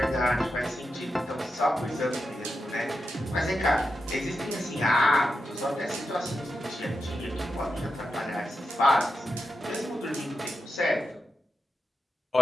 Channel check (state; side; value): normal; both; correlation 0.88